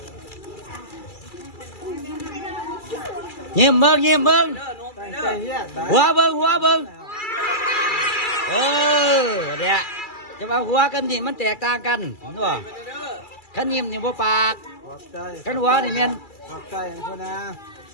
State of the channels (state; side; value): late; right; 2.3 ms